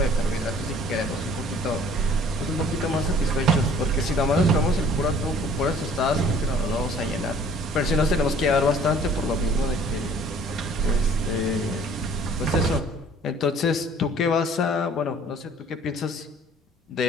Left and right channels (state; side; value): normal; both; correlation 0.53